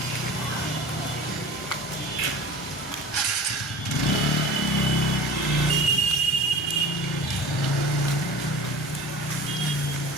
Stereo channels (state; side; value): normal; both; correlation 0.40